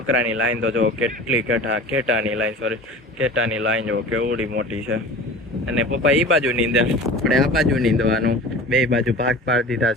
લાઈન તો જો કેટલી કેટાની લાઈન, સોરી કેટાની લાઈન જો કેવડી મોટી છે. અને પપ્પા એ બાજુ નીંદે, આપણે આ બાજુ નીંદવાનું. 2 બાજુ ભાગ પાડી દીધા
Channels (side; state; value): both; normal; correlation 0.38